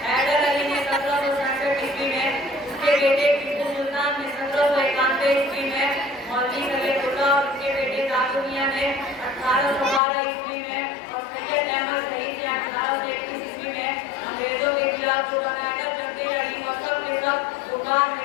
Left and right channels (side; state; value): right; drops out; at 10.0 s